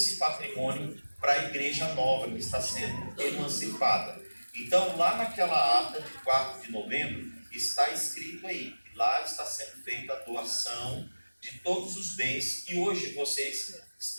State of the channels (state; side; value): inverted; both; correlation -1.00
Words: patrimônio para a igreja nova que está sendo emancipada. Então, lá naquela ata de 4 de novembro, está escrito aí, que lá está sendo feita a doação de todos os bens que hoje vocês